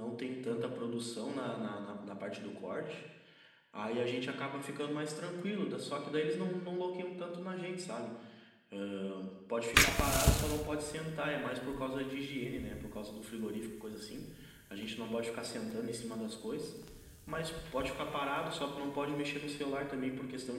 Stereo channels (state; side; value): identical; both; correlation 1.00